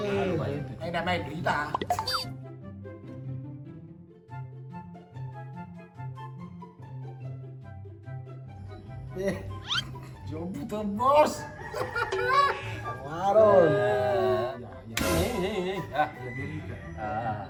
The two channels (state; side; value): identical; both; correlation 1.00